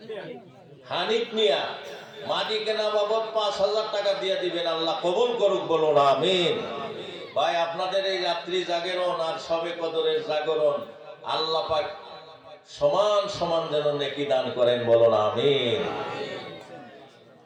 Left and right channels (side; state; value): both; identical; correlation 1.00